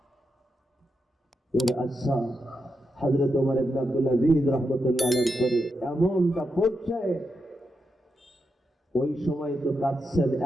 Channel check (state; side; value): normal; both; correlation 0.85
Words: এর আচ্ছা হযরত ওমর ইবনে আব্দুল আজিজ রাহমাতুল্লাহ আলাইহির পরে এমনটা পড়ছে, ওই সময় তো কাঁদছেন,